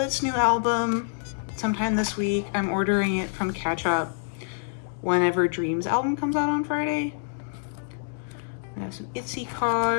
new album sometime this week. I'm ordering it from Catch Up whenever Dream's album comes out on Friday. I have some ITZY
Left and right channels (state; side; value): silent; right; digital silence